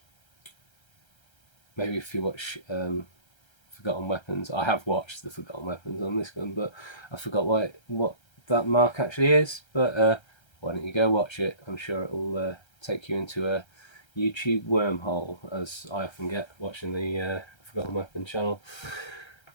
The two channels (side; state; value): right; late; 1.3 ms